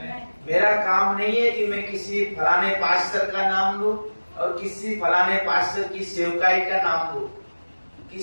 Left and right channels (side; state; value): both; inverted; correlation -1.00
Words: मेरा काम नहीं है कि मैं किसी फलाने पास्टर का नाम लूं और किसी फलाने पास्टर की सेवकाई का नाम लूं।